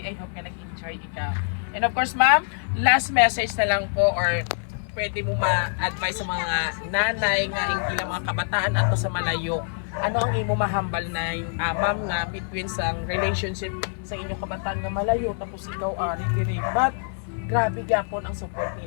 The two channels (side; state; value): right; silent; 62 dB below the other